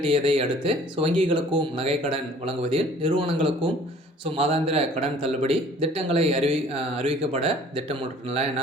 அடுத்து வங்கிகளுக்கும் நகைக்கடன் வழங்குவதில் நிறுவனங்களுக்கும் மாதாந்திர கடன் தள்ளுபடி திட்டங்களை அறிவிக்கப்பட திட்டமிட்டுலாம்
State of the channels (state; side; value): normal; both; correlation 0.52